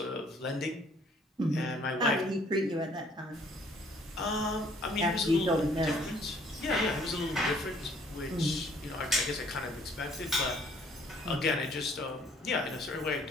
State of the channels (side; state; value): both; normal; correlation 0.60